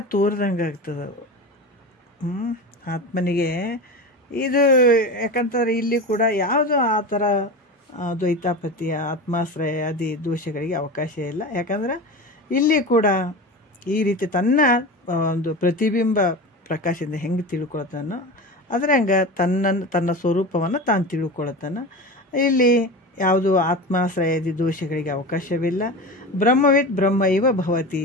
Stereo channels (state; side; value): normal; both; correlation 0.27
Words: ತೋರ್ದಂಗೆ ಆಗ್ತದೆ ಆತ್ಮನಿಗೆ. ಇದು ಯಾಕಂತಾರೆ ಇಲ್ಲಿ ಕೂಡ ಯಾವುದು ಆ ಥರ ದ್ವೈತಾಪತಿಯ ಆತ್ಮಾಶ್ರಯ ಆದಿ ದೋಷಗಳಿಗೆ ಅವಕಾಶ ಇಲ್ಲ. ಯಾಕಂದ್ರೆ ಇಲ್ಲಿ ಕೂಡ ಈ ರೀತಿ ತನ್ನ ಒಂದು ಪ್ರತಿಬಿಂಬ ಪ್ರಕಾಶದಿಂದ ಹೆಂಗೆ ತಿಳ್ಕೊಳ್ತಾನೋ ಅದ್ರಂಗೆ ತನ್ನ ಸ್ವರೂಪವನ್ನು ತಾನು ತಿಳ್ಕೊಳ್ತಾನೆ. ಇಲ್ಲಿ ಯಾವುದು ಆತ್ಮಾಶ್ರಯದಿ ದೋಷಗಳಿಗೆ ಅವಕಾಶವಿಲ್ಲ. ಬ್ರಹ್ಮವಿತ್ ಬ್ರಹ್ಮ ಇವ ಭವತಿ